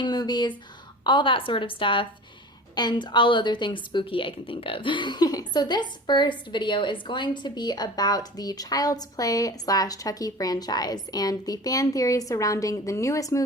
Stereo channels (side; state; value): both; normal; correlation 0.37